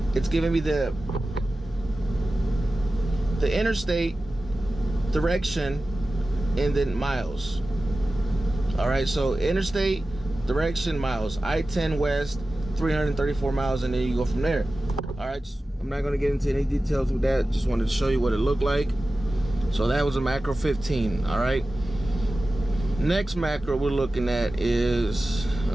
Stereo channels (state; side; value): normal; both; correlation 0.95